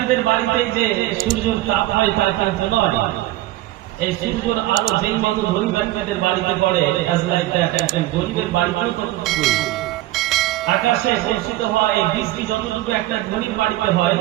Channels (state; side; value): quieter; left; 16.5 dB